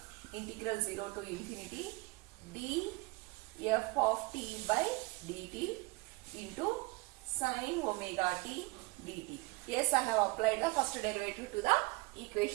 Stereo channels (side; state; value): left; quieter; 24.9 dB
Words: integral 0 to infinity df of t by dt into sine omega t dt. Yes, I have applied the first derivative to the